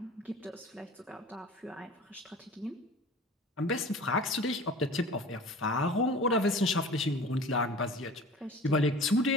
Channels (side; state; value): both; normal; correlation 0.40